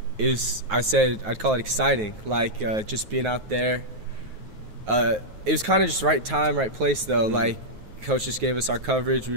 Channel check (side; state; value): left; late; 9.4 ms